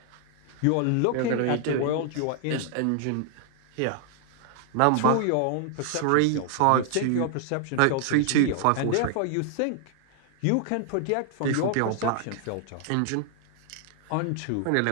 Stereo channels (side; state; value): both; different; correlation 0.00